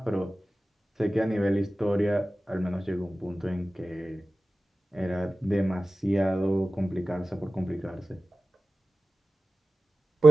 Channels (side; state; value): both; normal; correlation 0.95